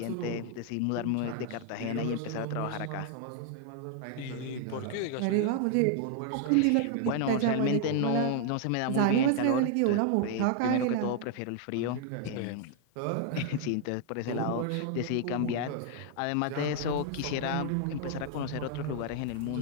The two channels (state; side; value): different; both; correlation 0.00